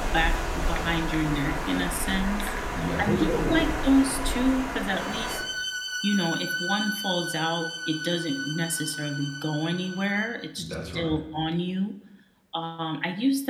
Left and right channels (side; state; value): both; identical; correlation 1.00